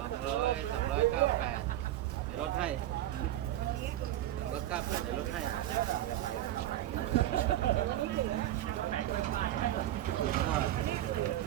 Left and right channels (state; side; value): quieter; left; 13.4 dB